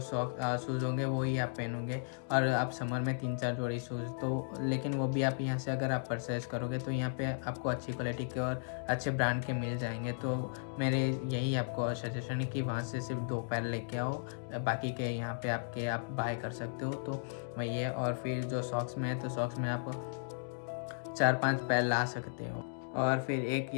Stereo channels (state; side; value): silent; right; digital silence